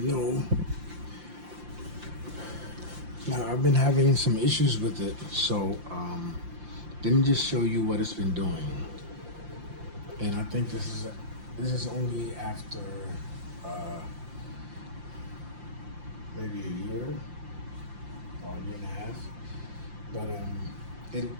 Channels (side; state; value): left; late; 5.7 ms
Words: Now, I've been having some issues with it, so let me just show you what it's been doing. And I think this is only after maybe a year or a year and a half, but it